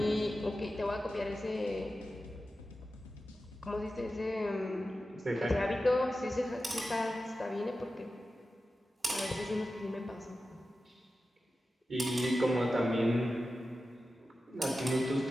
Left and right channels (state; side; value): normal; both; correlation 0.93